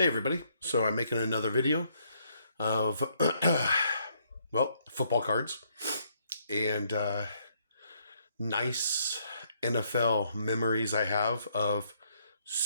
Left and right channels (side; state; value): both; inverted; correlation -0.71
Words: so I'm making another video of, football cards and nice NFL memories I have of